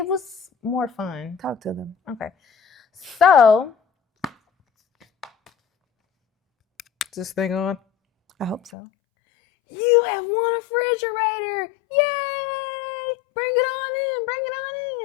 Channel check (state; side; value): drops out; right; at 8.7 s